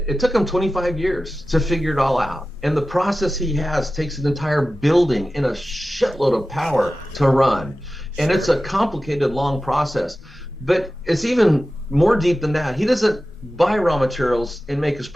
took him 25 years to figure it all out. And the process he has takes an entire building and a shitload of power to run. And it's a complicated, long process. But it's even more deep than that. He doesn't buy raw materials and make his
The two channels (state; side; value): normal; both; correlation 0.95